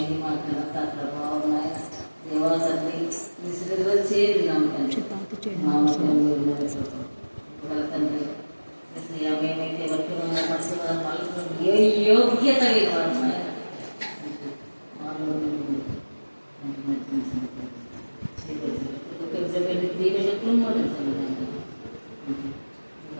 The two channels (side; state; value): both; inverted; correlation -1.00